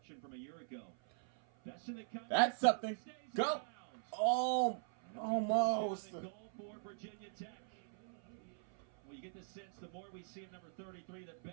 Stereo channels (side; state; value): left; silent; 50 dB below the other